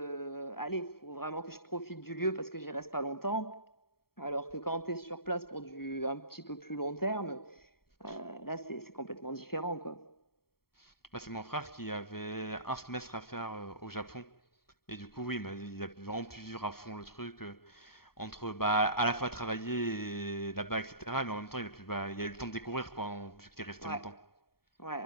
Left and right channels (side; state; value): right; late; 0.94 ms